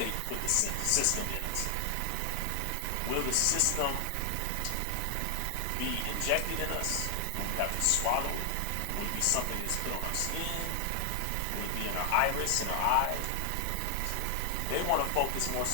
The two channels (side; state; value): both; different; correlation 0.00